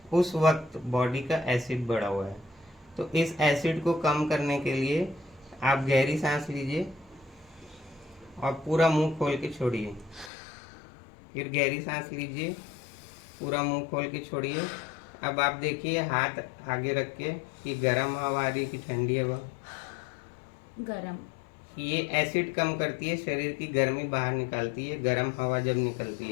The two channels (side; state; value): right; drops out; at 10.3 s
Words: उस वक्त बॉडी का एसिड बढ़ा हुआ है। तो इस एसिड को कम करने के लिए आप गहरी सांस लीजिए और पूरा मुंह खोल के छोड़िए। फिर गहरी सांस लीजिए, पूरा मुंह खोल के छोड़िए। अब आप देखिए हाथ आगे रख के कि गर्म हवा आ रही कि ठंडी हवा? गरम। ये एसिड कम करती है, शरीर की गर्मी बाहर निकालती है, गर्म हवा जब निकलती